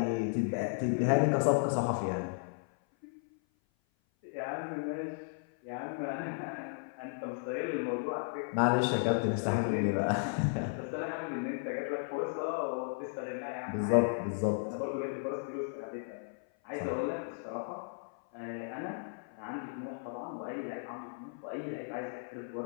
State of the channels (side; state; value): right; silent; 55 dB below the other